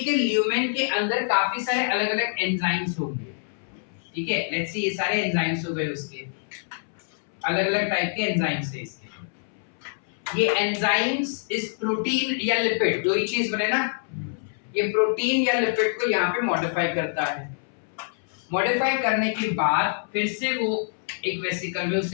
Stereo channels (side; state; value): right; silent; 61 dB below the other